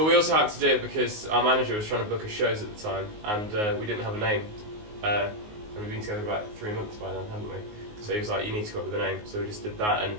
we also had to do it because our manager was trying to book us shows at the time, and we didn't have a name. And we've been together about 3 months by then, hadn't we? So he was like, you need to come up with a name. So we just did that, and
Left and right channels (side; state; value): left; late; 19 ms